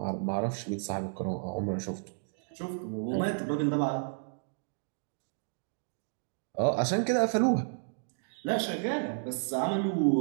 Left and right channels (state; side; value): silent; left; digital silence